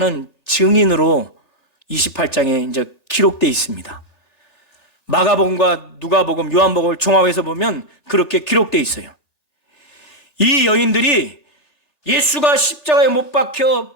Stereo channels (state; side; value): late; left; 1.9 ms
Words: 증인으로 28장에 이제 기록되어 있습니다. 마가복음과 누가복음, 요한복음을 종합해서 보면 그렇게 기록되어 있어요. 이 여인들이 예수가 십자가에 못 박혀